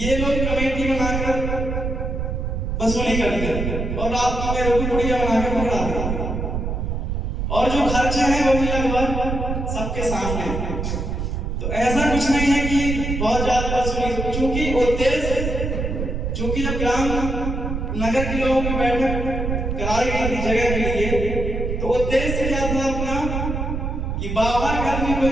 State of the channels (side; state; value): right; noise; rumble, 2 dB below the sound